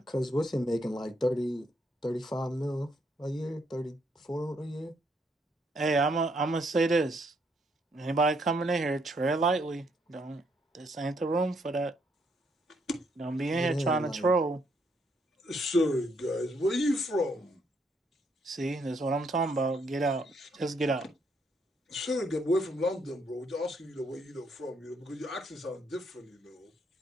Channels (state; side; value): normal; both; correlation 0.73